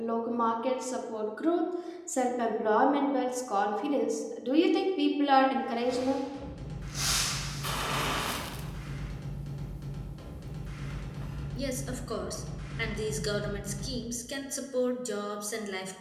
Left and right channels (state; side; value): identical; both; correlation 1.00